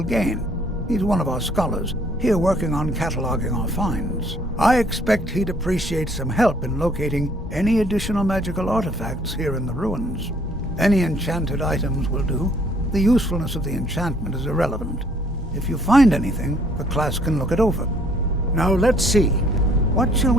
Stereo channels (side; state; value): both; normal; correlation 0.62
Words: Gain? He's one of our scholars, here working on cataloging our finds. I expect he'd appreciate some help in locating any additional magical artifacts here in the ruins. Any enchanted items will do. The usefulness of the enchantment is irrelevant. If you find anything, the class can look it over. Now let's see. What shall